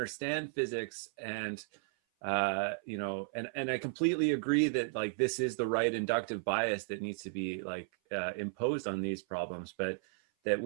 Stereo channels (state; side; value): silent; left; 55 dB below the other